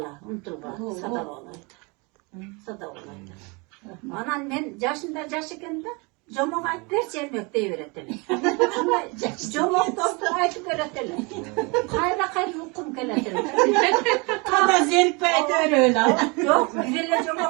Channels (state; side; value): quieter; left; 29.3 dB